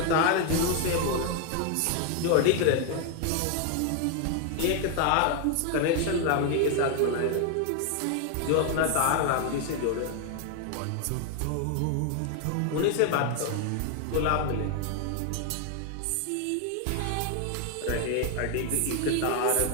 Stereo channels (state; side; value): different; both; correlation 0.01